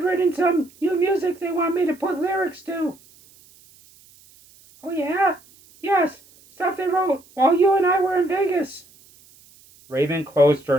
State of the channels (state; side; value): noise; right; hiss, 27 dB below the sound